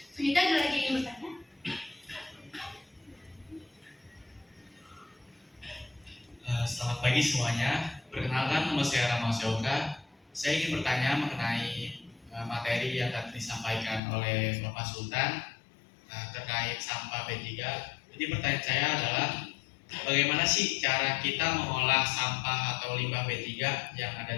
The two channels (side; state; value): right; drops out; at 14.0 s